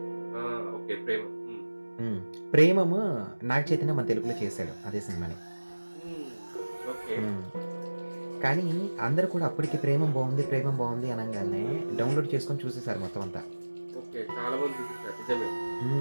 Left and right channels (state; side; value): inverted; both; correlation -1.00